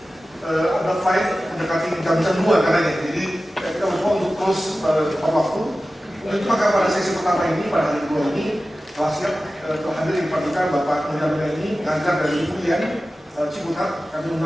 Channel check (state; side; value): normal; both; correlation 0.95